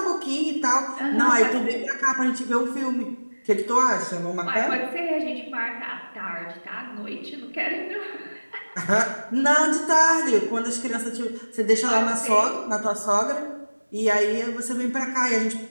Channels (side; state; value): both; inverted; correlation -1.00